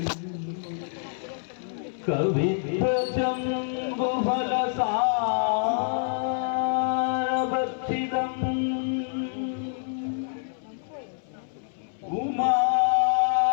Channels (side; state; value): right; silent; 60 dB below the other